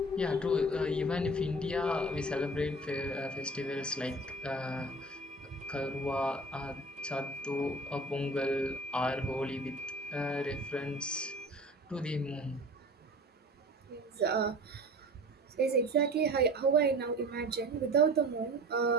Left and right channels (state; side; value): normal; both; correlation 0.41